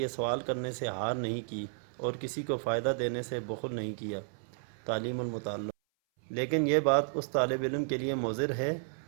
سوال کرنے سے ہار نہیں کی اور کسی کو فائدہ دینے سے بخل نہیں کیا۔ تعلیم المتعلم: لیکن یہ بات اس طالب علم کے لیے مضر ہے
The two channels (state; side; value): silent; left; 56 dB below the other